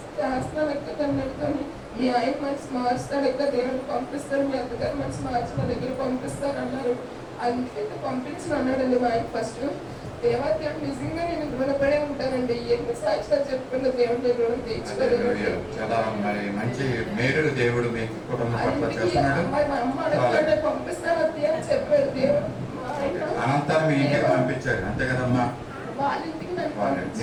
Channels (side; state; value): both; identical; correlation 1.00